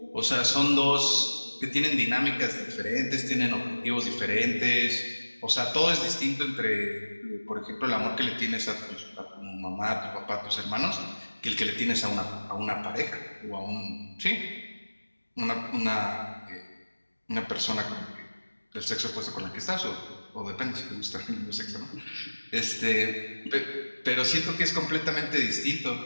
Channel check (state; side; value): inverted; both; correlation -1.00